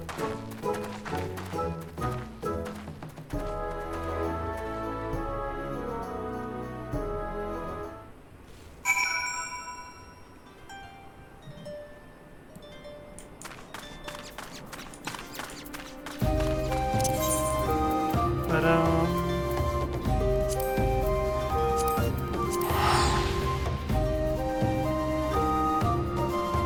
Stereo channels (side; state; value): both; identical; correlation 1.00